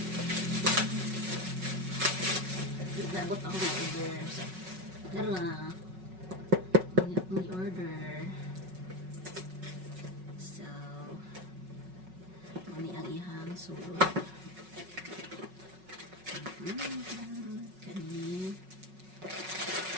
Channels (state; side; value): late; left; 5.4 ms